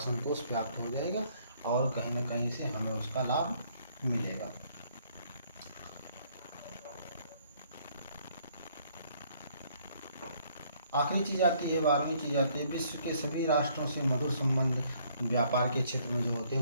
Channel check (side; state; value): both; inverted; correlation -0.64